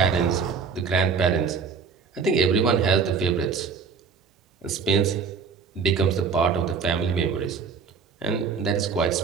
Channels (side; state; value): left; quieter; 5.7 dB